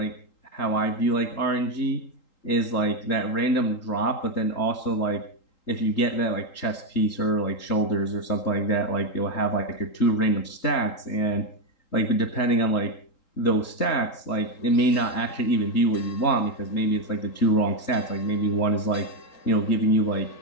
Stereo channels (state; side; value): late; right; 3.8 ms